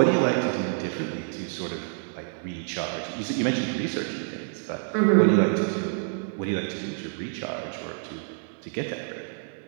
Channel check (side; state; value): left; silent; 60 dB below the other